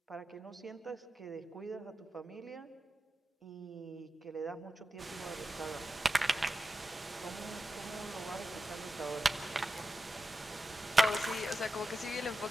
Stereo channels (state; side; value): normal; both; correlation 0.90